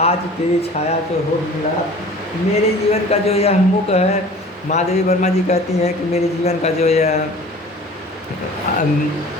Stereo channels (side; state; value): both; normal; correlation 0.44